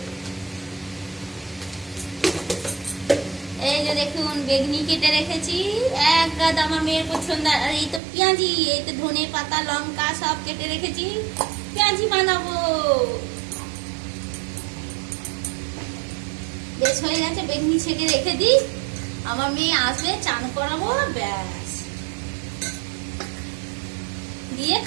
এই যে দেখুন বেগনি কেটে রেখেছি, এক গাদ আমার মেয়ের পছন্দ। আর এই তো পেঁয়াজি, এই তো ধনে পাতা, লঙ্কা সব কেটে রেখেছি, পেঁয়াজি বানাবো। বেশ হয়ে গেছে, বেগনি ছেঁকে রেখে দিই। আমার মেয়ে আসবে, চান করাবো, ব্যাস দিয়ে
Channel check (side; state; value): left; drops out; at 8.0 s